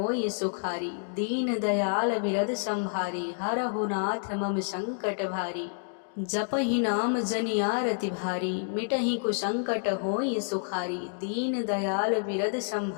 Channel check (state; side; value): silent; right; digital silence